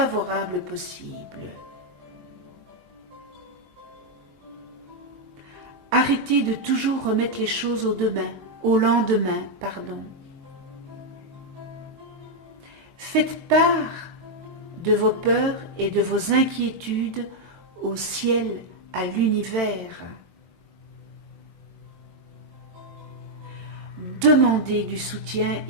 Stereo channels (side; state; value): left; late; 22 ms